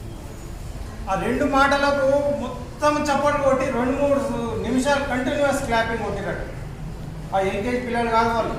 ఆ 2 మాటలకు మొత్తం చప్పట్లు కొట్టి 2-3 నిమిషాలు కంటిన్యూస్ క్లాపింగ్ కొట్టినట్టు. ఆ ఎల్కేజీ పిల్లలు కాదు వాళ్ళు,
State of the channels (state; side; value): identical; both; correlation 1.00